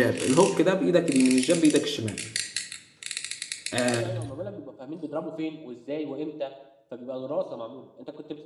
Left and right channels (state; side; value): identical; both; correlation 1.00